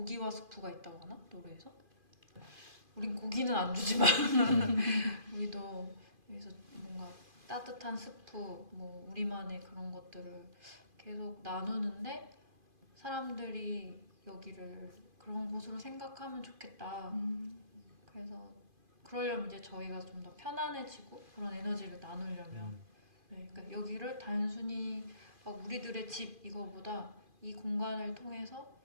스프가 있다고 하나? 노래에서? 우린 고기는 안 주지만 우리도 여기서 뭔가 따뜻한 스프, 뭐 우리만의 그런 것들을 계속 나누는데 사람들이 여기를 그런 곳으로 생각하면 좋겠다. 그래서 그러려면 이제 저희가 좀 더 편안해지고 그런 에너지를 나누려면 네, 그러니까 여기를 단순히 막 우리들의 집 이거보다 이 공간을 통해서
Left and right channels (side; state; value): left; late; 2.5 ms